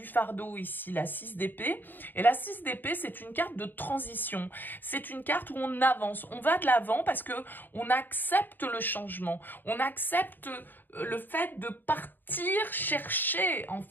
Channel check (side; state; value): right; late; 0.091 ms